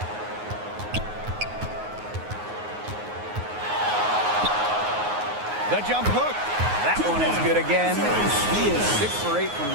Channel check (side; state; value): left; late; 9.5 ms